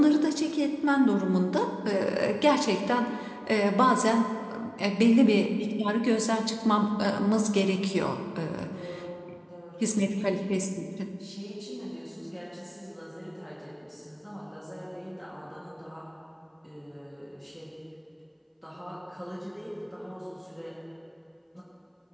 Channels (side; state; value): both; identical; correlation 1.00